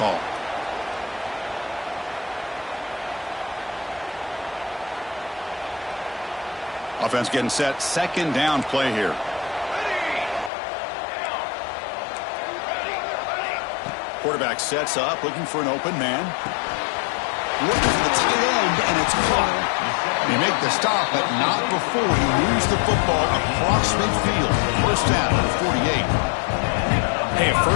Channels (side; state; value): right; drops out; at 10.5 s